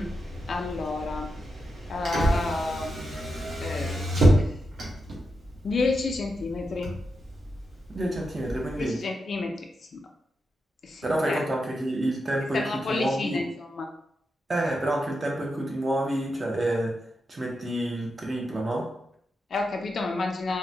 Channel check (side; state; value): both; normal; correlation 0.87